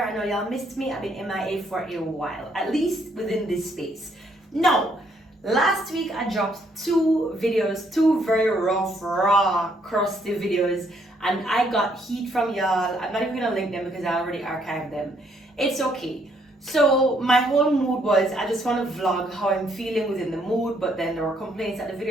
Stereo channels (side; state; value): both; normal; correlation 0.70